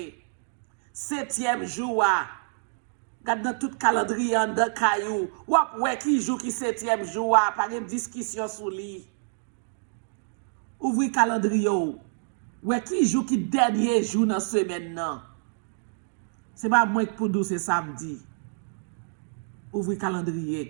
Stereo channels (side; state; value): left; silent; digital silence